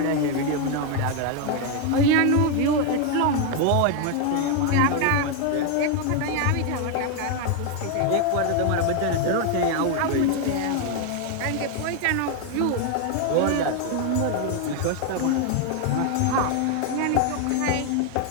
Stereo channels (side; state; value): both; different; correlation 0.01